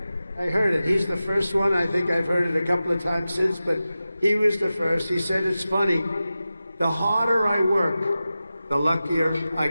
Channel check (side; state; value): both; inverted; correlation -0.94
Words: He's the first one. I think I've heard it a couple of times since, but he was the first. He said, it's funny, the harder I work, the luckier I